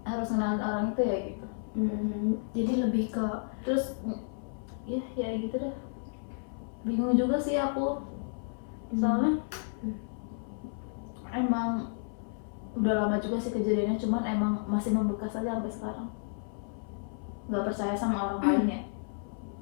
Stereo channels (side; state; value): right; silent; 57 dB below the other